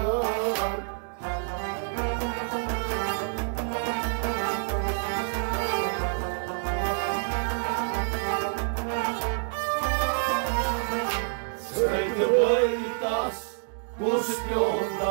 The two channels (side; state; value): left; silent; digital silence